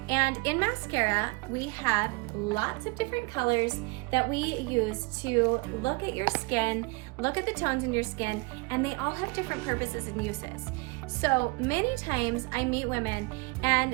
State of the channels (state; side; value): quieter; left; 27.6 dB